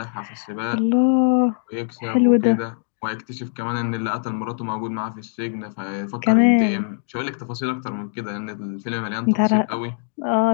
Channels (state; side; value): silent; right; digital silence